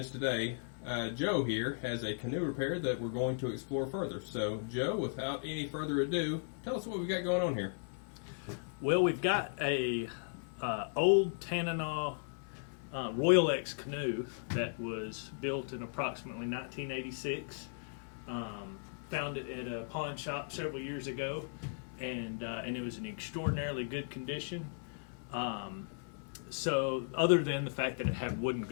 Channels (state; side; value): silent; right; 53 dB below the other